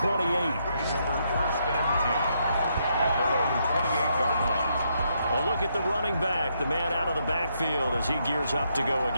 Over first and 10 at their own 28-yard line. A look at the running back, the man out of the backfield as he gears up to go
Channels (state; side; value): inverted; both; correlation -0.77